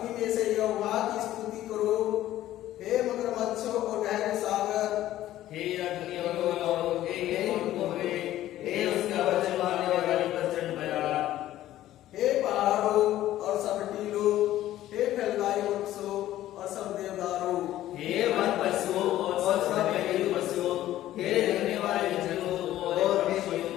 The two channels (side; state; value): right; quieter; 13.8 dB